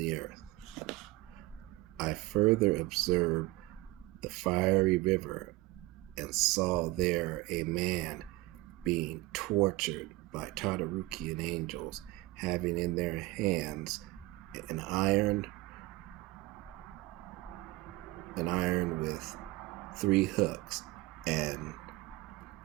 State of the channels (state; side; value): quieter; left; 20.2 dB